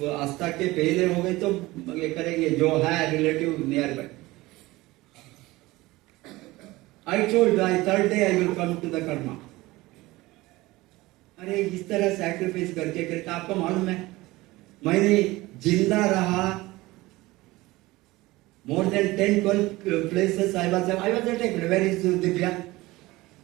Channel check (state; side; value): quieter; left; 19.8 dB